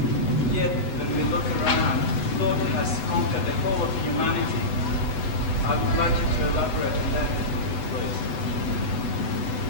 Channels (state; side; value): late; right; 8.0 ms